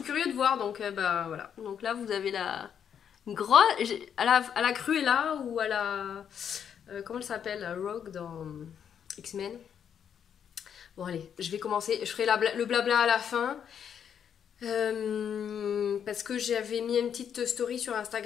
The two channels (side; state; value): right; quieter; 8.2 dB